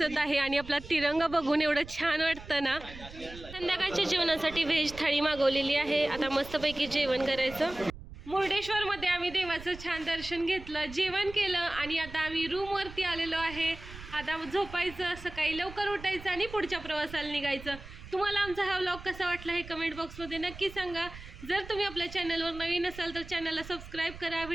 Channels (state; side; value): noise; right; rumble, 15 dB below the sound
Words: आहे आणि आपला तिरंगा बघून एवढं छान वाटतं ना. संध्याकाळच्या जेवणासाठी व्हेज थाळी मागवलेली आहे. आता मस्तपैकी जेवण करायचं. मुर्डेश्वरमध्ये आम्ही देवाचं छान दर्शन घेतलं, जेवण केलं आणि आता आम्ही रूमवरती आलेलो आहे. आता झोपायचं, सकाळी लवकर उठायचं आणि पुढच्या प्रवासाला निघायचं. तुम्हाला आमचा हा व्लॉग कसा वाटला हे कमेंट बॉक्समध्ये नक्की सांगा. जर तुम्ही आपल्या चॅनलवर नवीन असाल तर चॅनलला सबस्क्राईब करा,